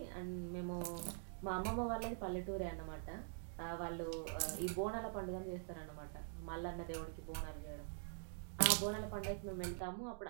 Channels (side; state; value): left; silent; digital silence